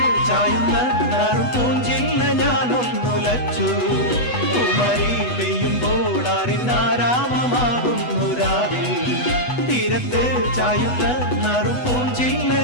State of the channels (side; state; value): right; late; 8.1 ms